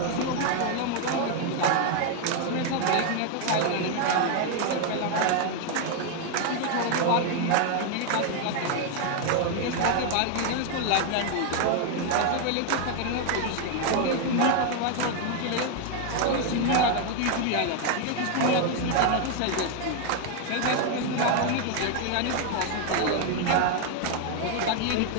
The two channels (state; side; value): different; both; correlation 0.00